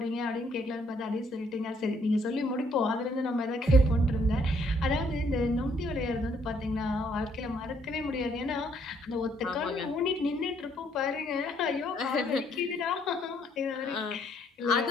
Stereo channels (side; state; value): both; normal; correlation 0.68